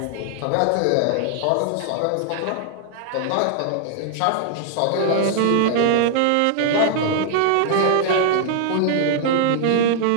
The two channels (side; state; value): both; different; correlation -0.01